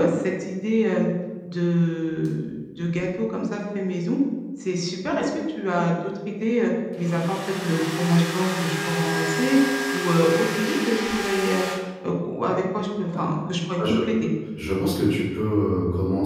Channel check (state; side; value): identical; both; correlation 1.00